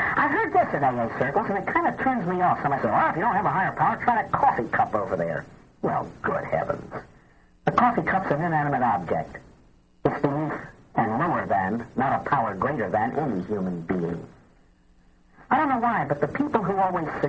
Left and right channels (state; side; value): identical; both; correlation 1.00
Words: heard this in AA circles, and it kind of turns me off. Somebody says, well, if you don't have a higher power, try that coffee cup over there. Well, good heavens. The coffee cup's an inanimate object. It's beneath and lower than, not a power greater than, any human being. I don't know why, but the people who always